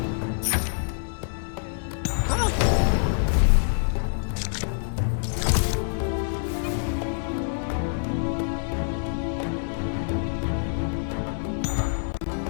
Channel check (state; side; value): silent; right; digital silence